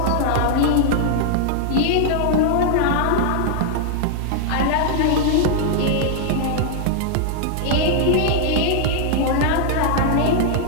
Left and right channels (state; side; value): different; both; correlation 0.00